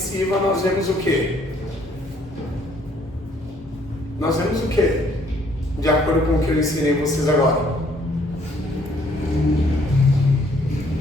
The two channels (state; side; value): normal; both; correlation 0.64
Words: nós vemos o quê? Nós vemos o quê? De acordo com o que eu ensinei vocês agora.